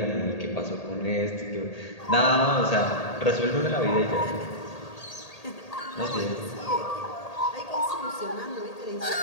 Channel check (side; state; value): right; late; 1.8 ms